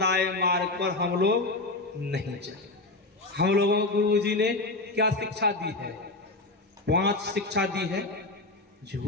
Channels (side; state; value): right; quieter; 3.0 dB